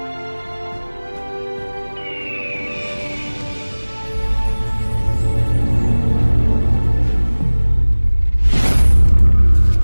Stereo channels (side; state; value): both; inverted; correlation -1.00